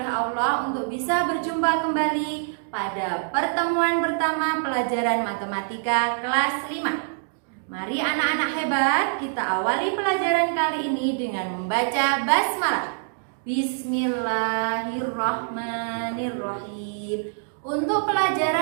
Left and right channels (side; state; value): left; silent; digital silence